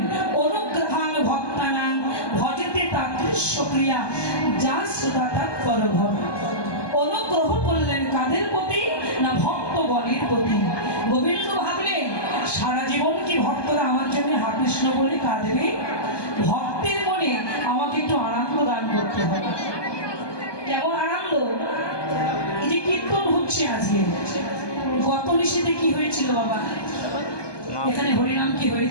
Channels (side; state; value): right; late; 1.2 ms